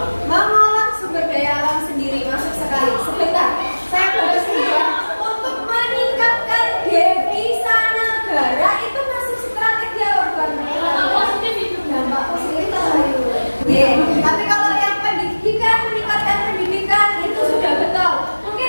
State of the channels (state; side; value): inverted; both; correlation -1.00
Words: Mengolah sumber daya alam sendiri, masuk sekali. Sebentar, saya baru ya. Untuk meningkatkan devisa negara itu masuk strategi apa bukan? Dampak positif itu. Dampak positif ayo. Tapi kalau yang pendidikan, meningkatkan pendidikan itu sudah betul. Mungkin